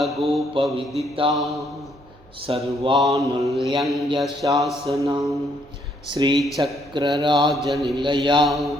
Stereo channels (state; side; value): normal; both; correlation 0.70